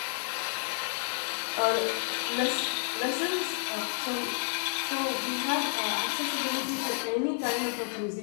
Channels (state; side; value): silent; right; digital silence